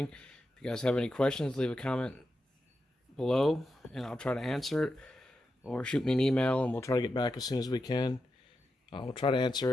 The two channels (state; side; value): normal; both; correlation 0.88